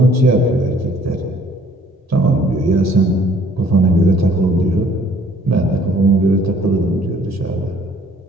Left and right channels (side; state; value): both; normal; correlation 0.58